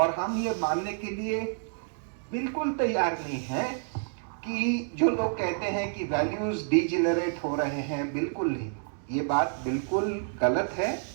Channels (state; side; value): silent; left; digital silence